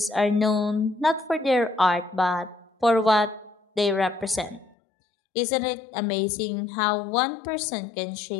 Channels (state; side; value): drops out; right; at 4.8 s